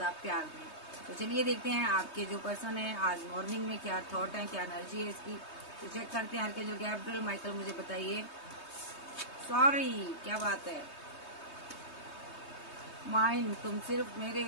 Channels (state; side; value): late; right; 3.2 ms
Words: आप प्यार दें। तो चलिए देखते हैं आपके जो पर्सन है आज मॉर्निंग में क्या थॉट है, क्या एनर्जी है इसकी। तो चेक करते हैं। के जो गैब्रियल माइकल, मुझे बताइए। सॉरी, क्या बात है? माइंड, तुम सिर्फ मेरे